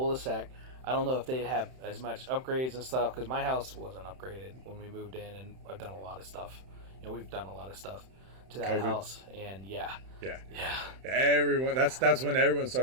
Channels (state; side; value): late; left; 31 ms